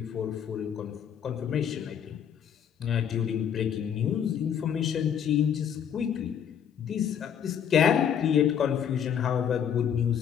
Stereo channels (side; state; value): right; quieter; 8.5 dB